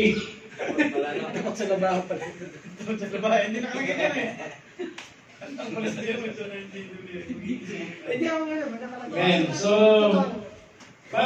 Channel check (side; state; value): both; identical; correlation 1.00